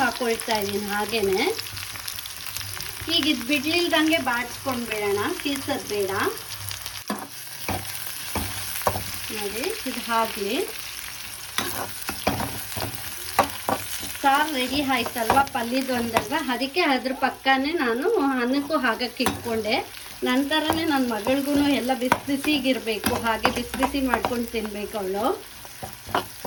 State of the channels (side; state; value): both; identical; correlation 1.00